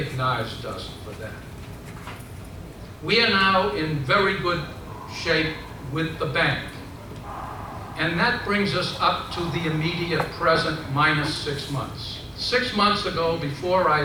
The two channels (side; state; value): both; identical; correlation 1.00